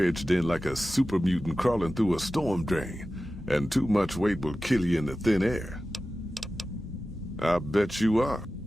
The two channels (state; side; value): normal; both; correlation 0.95